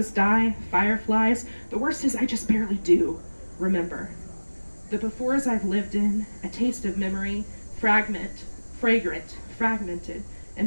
Di, fireflies. The worst is I just barely do remember. The befores I've lived in, a taste of memory, fragrant, fragmented,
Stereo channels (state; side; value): inverted; both; correlation -1.00